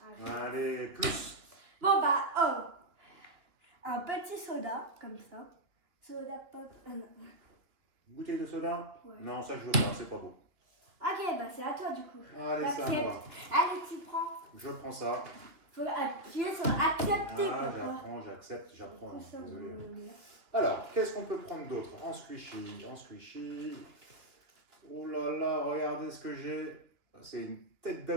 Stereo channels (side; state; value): left; late; 2.9 ms